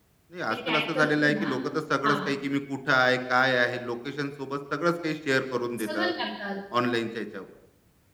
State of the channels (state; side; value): identical; both; correlation 1.00